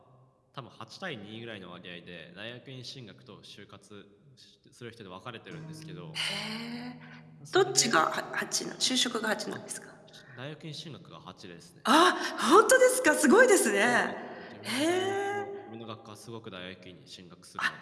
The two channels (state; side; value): identical; both; correlation 1.00